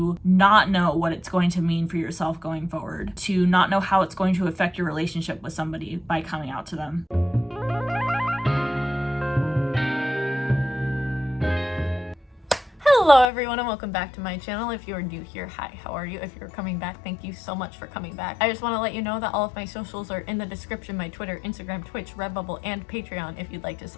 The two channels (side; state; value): right; drops out; at 13.2 s